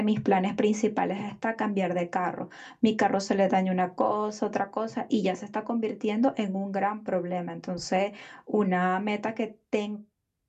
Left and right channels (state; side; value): identical; both; correlation 1.00